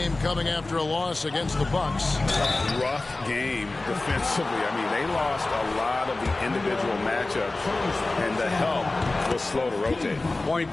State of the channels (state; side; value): quieter; right; 3.1 dB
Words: coming after a loss against the Bucks. A rough game defensively. I mean, they lost a lot of the individual matchups, and the help was slow to rotate. Point